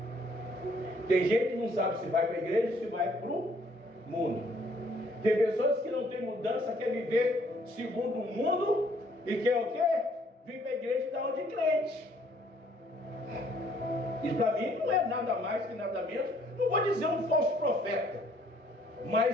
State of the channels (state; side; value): normal; both; correlation 0.63